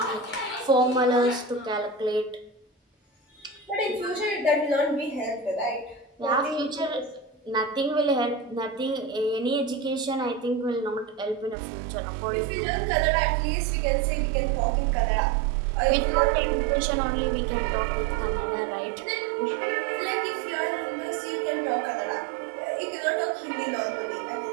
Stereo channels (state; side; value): drops out; left; at 11.6 s